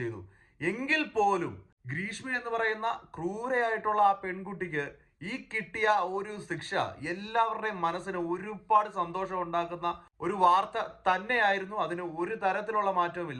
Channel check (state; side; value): identical; both; correlation 1.00